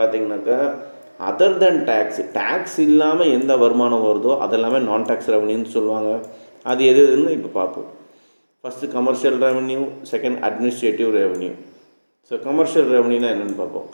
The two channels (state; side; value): inverted; both; correlation -1.00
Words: other தென் tax இல்லாமல் எந்த வருமானம் வருதோ அதெல்லாமே நான் டேக்ஸ் ரெவன்யூன்னு சொல்லுவாங்க. அது எதுன்னு இப்போ பார்ப்போம். First commercial revenue, second administrative revenue. So commercial ரெவன்யூனா என்னென்னு பார்ப்போம்.